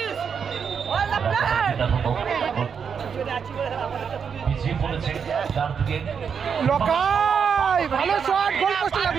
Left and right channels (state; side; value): quieter; left; 6.7 dB